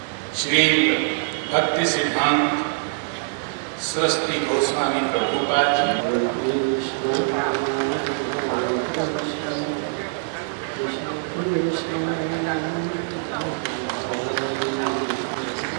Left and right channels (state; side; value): silent; left; digital silence